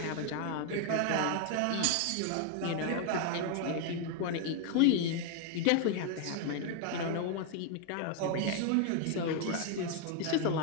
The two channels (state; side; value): different; both; correlation 0.00